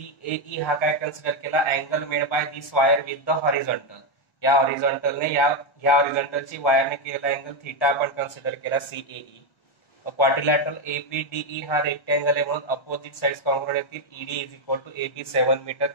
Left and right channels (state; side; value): late; right; 1.1 ms